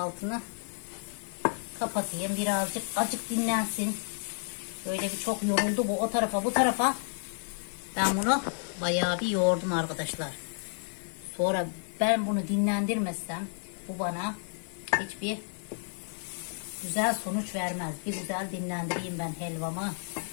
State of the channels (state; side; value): silent; right; 57 dB below the other